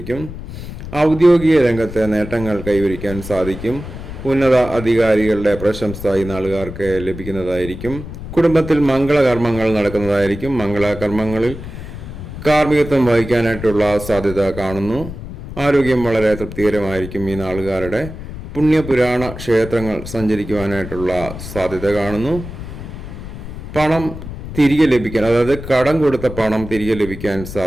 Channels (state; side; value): noise; left; rumble, 11 dB below the sound